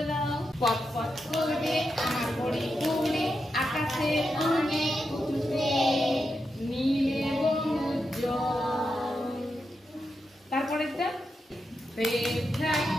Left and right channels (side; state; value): both; normal; correlation 0.86